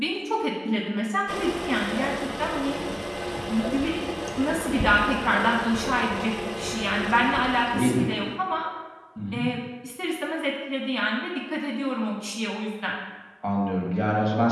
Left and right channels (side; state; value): both; identical; correlation 1.00